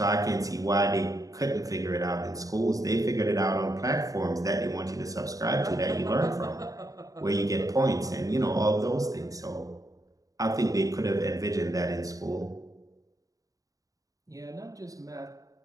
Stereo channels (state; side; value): late; left; 0.17 ms